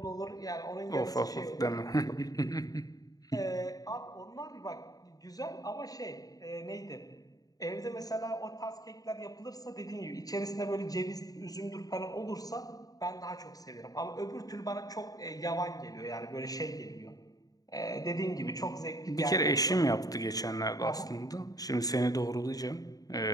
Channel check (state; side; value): late; right; 0.18 ms